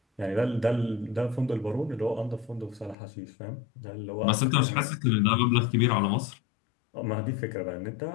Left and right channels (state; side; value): drops out; right; at 3.0 s